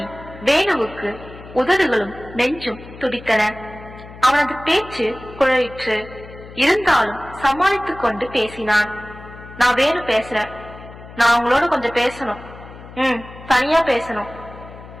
வேணுவுக்கு உதடுகளும் நெஞ்சும் துடித்தன. அவனது பேச்சு குழலிற்று. இருந்தாலும் சமாளித்துக் கொண்டு பேசினான். நான் வேணு பேசுறேன். நான் உங்களோட கொஞ்சம் பேசணும். தனியா பேசணும்.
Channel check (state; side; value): noise; left; hum, 17 dB below the sound